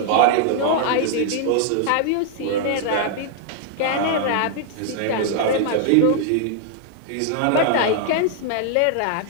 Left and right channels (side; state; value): both; different; correlation -0.01